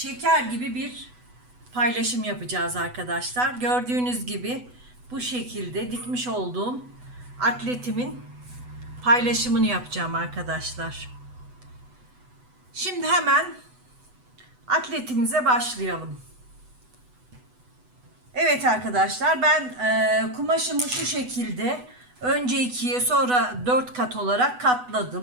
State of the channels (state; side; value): late; left; 8.1 ms